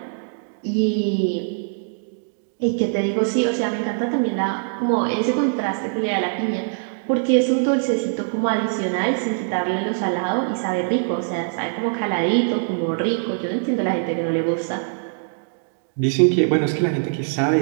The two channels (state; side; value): silent; left; digital silence